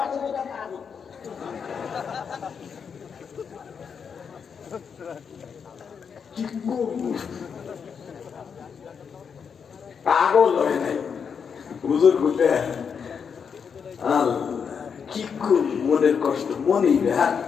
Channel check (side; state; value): right; quieter; 6.6 dB